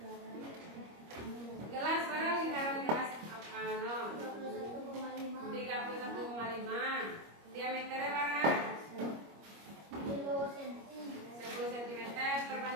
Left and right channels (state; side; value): late; left; 25 ms